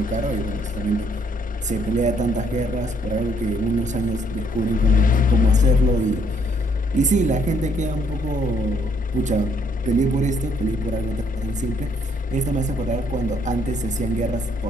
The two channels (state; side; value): normal; both; correlation 0.69